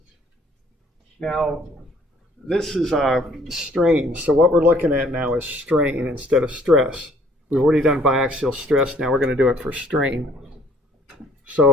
Now, this is strain. So what we're looking at now is strain instead of stress. We've already done biaxial stress. Now we're going to do it for strain.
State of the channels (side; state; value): both; normal; correlation 0.59